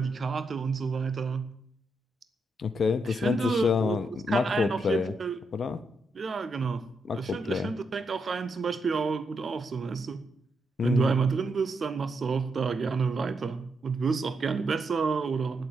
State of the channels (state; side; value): normal; both; correlation 0.81